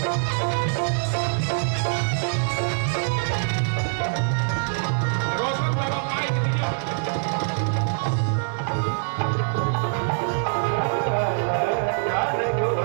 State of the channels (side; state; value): left; silent; digital silence